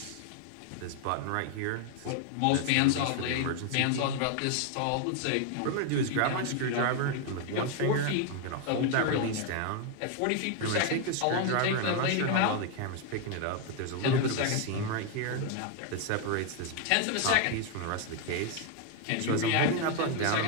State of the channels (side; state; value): both; different; correlation 0.00